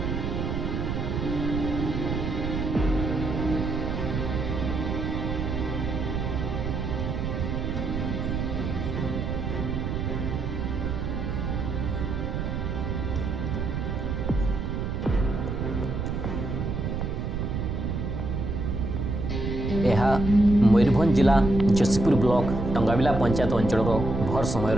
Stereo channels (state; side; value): noise; right; rumble, 2 dB below the sound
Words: यह मयूरभंज जिला जसीपुर ब्लॉक टंगाबिला पंचायत अंचल भर समय